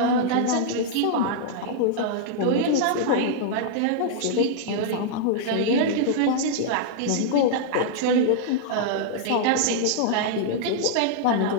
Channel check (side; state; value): both; different; correlation -0.01